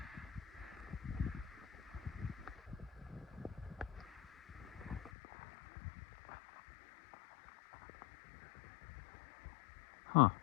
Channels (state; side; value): drops out; right; at 5.1 s